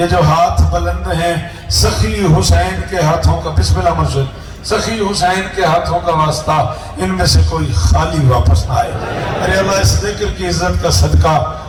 जो हाथ बुलंद हैं सखी हुसैन के हाथों का, बिस्मिल्लाह मुर्शिद, सखी हुसैन के हाथों का वास्ता, इनमें से कोई खाली वापस ना आए। अरे अल्लाह इस जिक्र की इज्जत का सदका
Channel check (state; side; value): identical; both; correlation 1.00